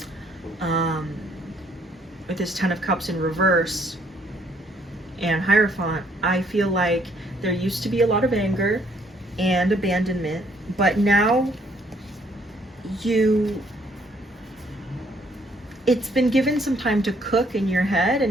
with this Ten of Cups in reverse and Hierophant, I feel like there used to be a lot of anger and abandonment, but now it's been given some time to cook in your head,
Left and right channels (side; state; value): both; normal; correlation 0.66